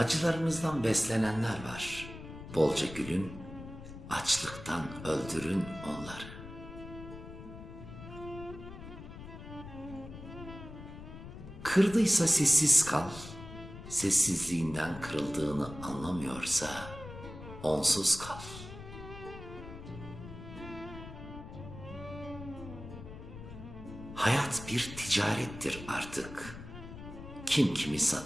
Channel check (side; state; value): left; noise; rumble, 13 dB below the sound